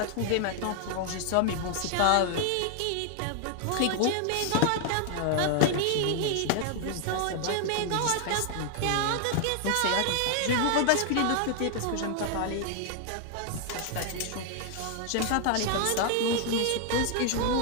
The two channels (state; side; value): different; both; correlation 0.00